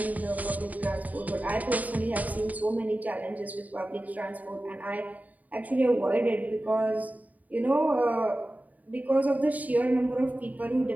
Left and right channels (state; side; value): late; left; 0.075 ms